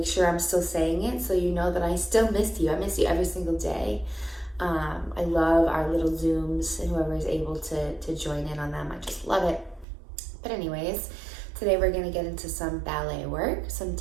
sure I'm still saying it so you know that I still miss you. I miss you every single day. I love our little Zooms and whoever is able to join in on them. I just love it. But anyways, today we're going to get into some ballet work, some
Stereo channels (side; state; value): left; drops out; at 9.9 s